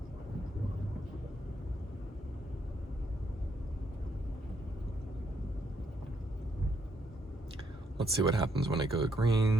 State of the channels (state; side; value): normal; both; correlation 0.74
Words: Let's see what happens when I go